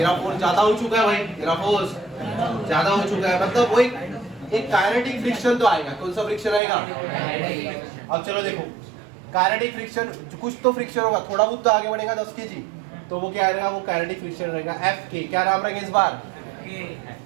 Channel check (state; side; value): drops out; left; at 6.6 s